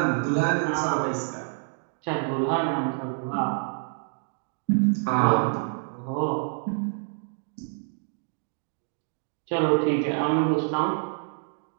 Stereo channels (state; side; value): silent; left; 56 dB below the other